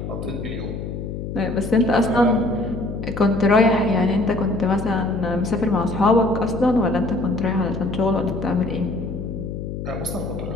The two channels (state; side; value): noise; left; hum, 6 dB below the sound